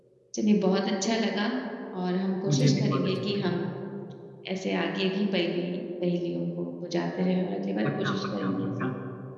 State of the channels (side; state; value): both; identical; correlation 1.00